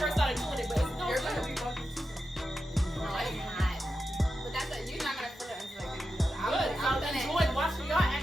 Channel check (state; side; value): normal; both; correlation 0.89